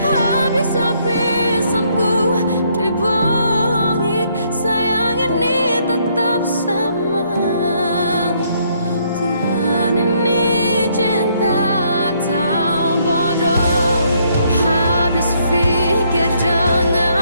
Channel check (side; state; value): both; inverted; correlation -0.70